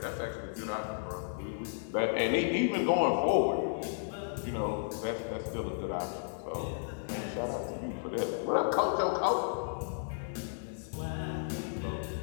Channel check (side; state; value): right; silent; digital silence